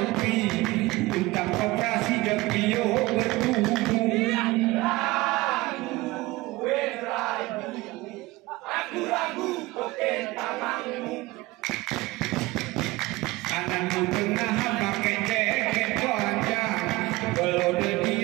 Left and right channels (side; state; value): left; quieter; 20.4 dB